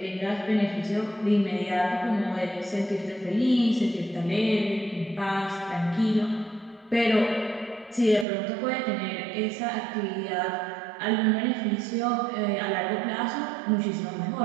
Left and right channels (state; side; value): drops out; left; at 8.2 s